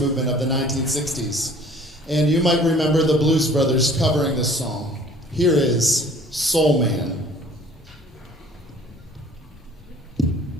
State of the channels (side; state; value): both; normal; correlation 0.51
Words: of the 1960s. And you might remember the Blues Brothers covering this song. Here is Soul Man.